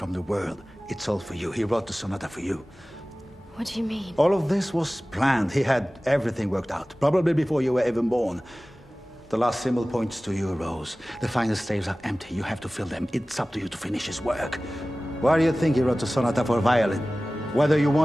the world, it's all for you. He wrote the sonata for you. What do you mean? All of this was planned. He had everything worked out, probably before you were even born. The last symbol points to you, Rose. The final staves are empty. You have to fill them. It's up to you to finish his work. Why do you think he wrote the sonata for violin? Whether you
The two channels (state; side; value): normal; both; correlation 0.97